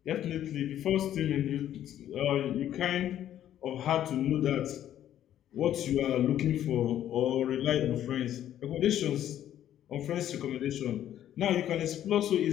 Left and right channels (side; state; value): right; quieter; 11.4 dB